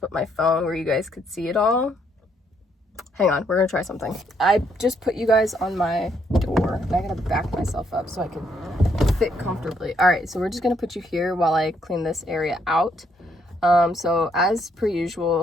my phone where you guys could see it all, hang on, we're gonna try something. I just put you guys on my door, and I gotta back myself up so I can fit comfortably. All right, so we're just gonna put you here while I clean this area out. So as per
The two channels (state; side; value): normal; both; correlation 0.72